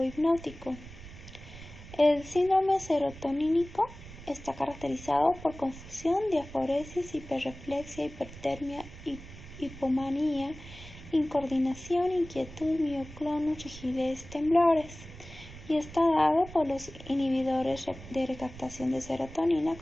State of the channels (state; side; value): noise; right; rumble, 16 dB below the sound